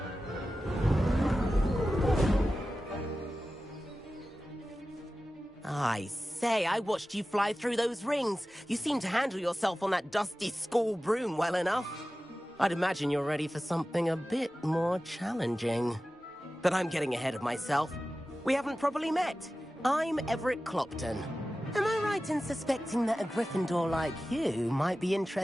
I say, I watched you fly through those rings. You seem to handle yourself on that dusty school broom well enough. I'd imagine you're ready for something a bit more challenging. But I'm getting ahead of myself. We haven't properly met. I'm Everett Clopton. Am I right in suspecting that a Gryffindor like you might be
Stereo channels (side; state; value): both; normal; correlation 0.95